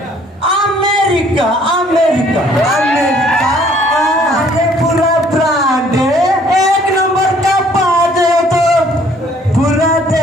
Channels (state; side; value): normal; both; correlation 0.60